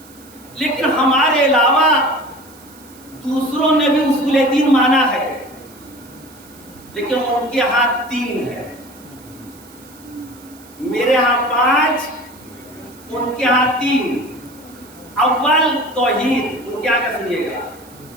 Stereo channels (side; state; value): right; noise; hiss, 24 dB below the sound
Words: لیکن ہمارے علاوہ دوسروں نے بھی اصول دین مانا ہے، لیکن ان کے ہاں 3 ہے. میرے ہاں 5، ان کے ہاں 3. اول توحید، ان کے آگے سنیے گا،